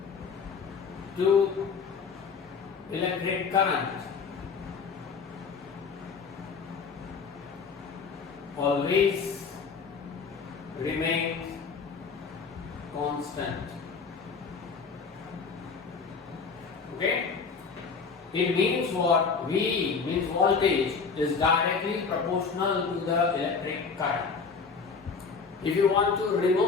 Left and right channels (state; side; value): quieter; right; 5.3 dB